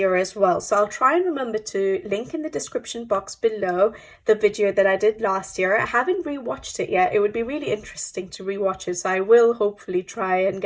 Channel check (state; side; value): identical; both; correlation 1.00